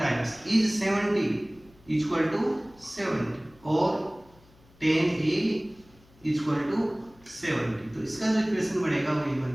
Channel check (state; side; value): noise; left; hum, 28 dB below the sound